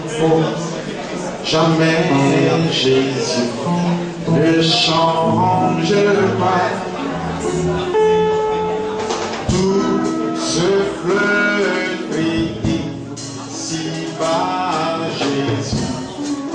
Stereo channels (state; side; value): identical; both; correlation 1.00